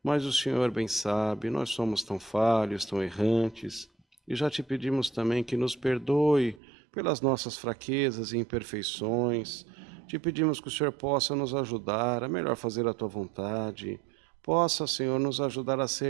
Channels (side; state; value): left; drops out; at 6.6 s